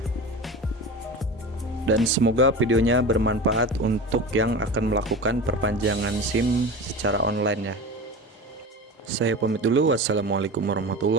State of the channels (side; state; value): both; normal; correlation 0.30